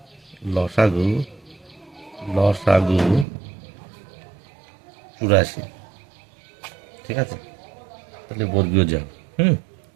লসাগু 84। ঠিক আছে, তাহলে বর্গীয় যা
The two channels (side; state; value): left; drops out; at 3.2 s